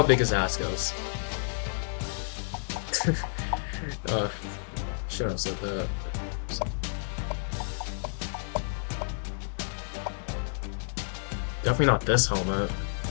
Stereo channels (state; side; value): silent; right; digital silence